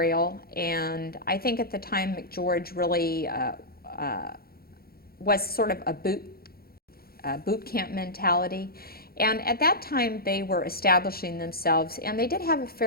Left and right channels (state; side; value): late; right; 0.44 ms